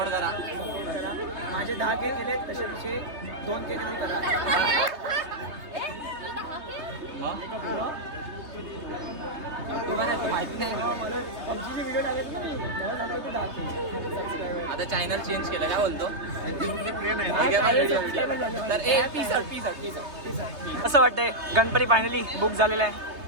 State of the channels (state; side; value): late; left; 3.3 ms